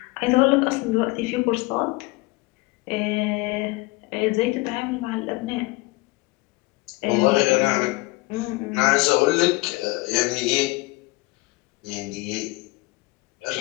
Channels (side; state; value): right; quieter; 22.8 dB